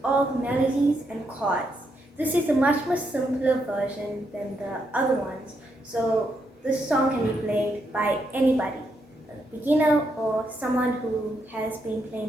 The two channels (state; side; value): normal; both; correlation 0.79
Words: all the melodies and chords. This is a much more simpler version than the other ones, so this song can be played by anybody, a beginner or someone who has been